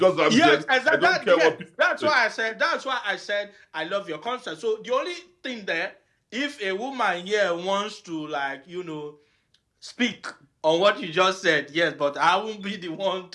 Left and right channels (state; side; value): identical; both; correlation 1.00